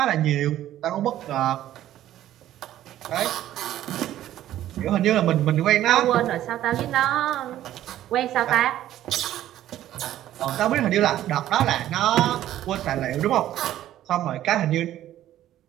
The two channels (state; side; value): quieter; left; 12.9 dB